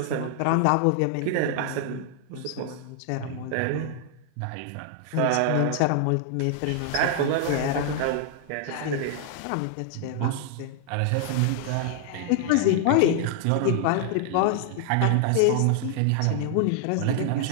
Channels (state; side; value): different; both; correlation 0.00